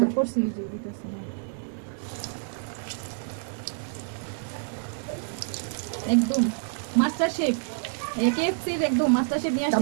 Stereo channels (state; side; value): silent; left; digital silence